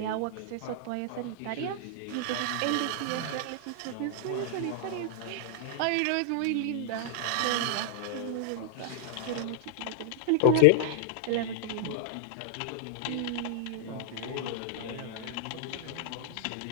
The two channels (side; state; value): both; different; correlation 0.00